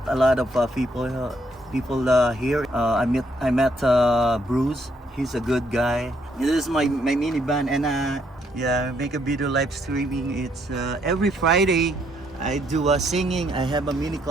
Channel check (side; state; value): both; normal; correlation 0.71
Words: a lot of people here. I met Bruce. He's a good guy. This is my minivan, and yeah, make a video live streaming. It's every Friday. I do singing. I have a mini